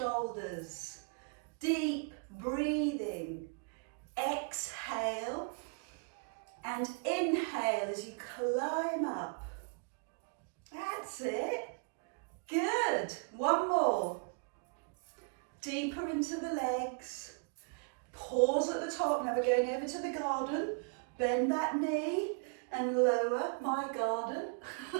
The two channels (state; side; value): quieter; left; 37.3 dB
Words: Deep breathing. Exhale and inhale as you climb up. That's it. Good. One more. Deeper into the legs. Pause at the top. Now we're going over to the garden. Bend that knee and lower my garden